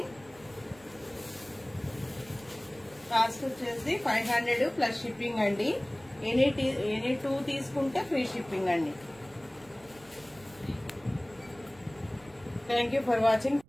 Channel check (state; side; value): noise; right; rumble, 26 dB below the sound